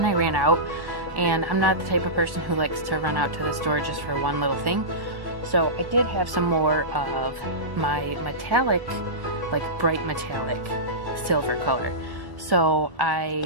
I ran out, and I'm not the type of person who likes to run out to the store just for one little thing. So I did have some more of my metallic, like bright metallic silver color.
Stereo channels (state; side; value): late; left; 1.1 ms